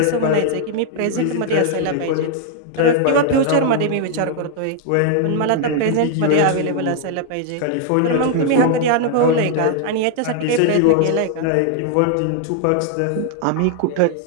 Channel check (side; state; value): both; different; correlation 0.00